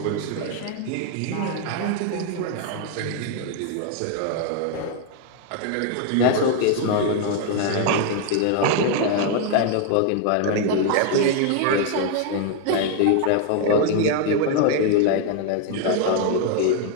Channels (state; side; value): different; both; correlation 0.00